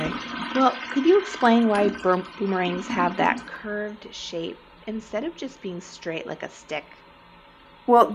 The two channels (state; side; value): identical; both; correlation 1.00